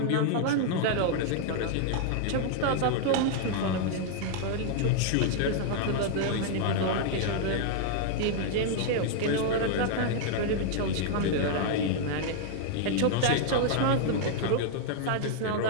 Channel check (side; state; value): both; different; correlation -0.01